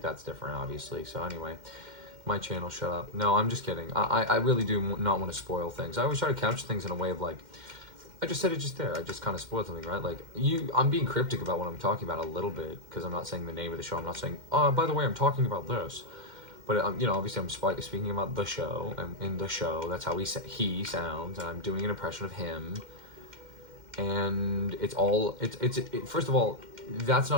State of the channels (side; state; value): left; late; 2.1 ms